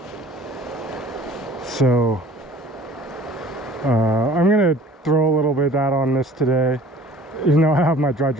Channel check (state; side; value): normal; both; correlation 0.47